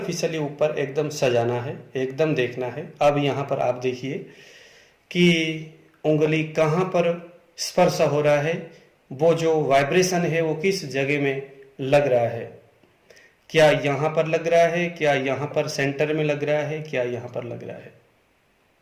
ऊपर एकदम सजाना है, एकदम देखना है। अब यहां पर आप देखिए कि उंगली कहां पर स्पर्श हो रहा है, वो जो वाइब्रेशन है वो किस जगह में लग रहा है, क्या यहां पर लग रहा है, क्या यहां पर सेंटर में लग रहा है, क्या यहां पर लग रहा है।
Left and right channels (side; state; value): both; identical; correlation 1.00